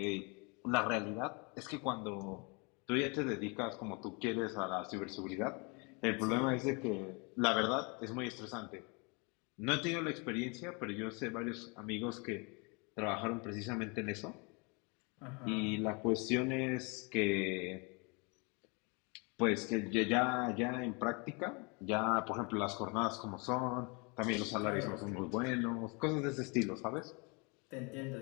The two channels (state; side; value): quieter; right; 31.1 dB